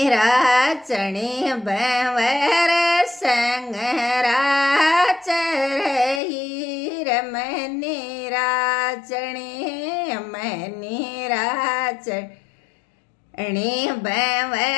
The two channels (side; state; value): right; drops out; at 6.2 s